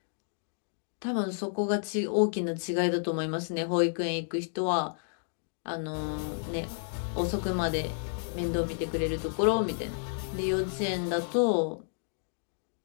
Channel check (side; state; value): right; silent; digital silence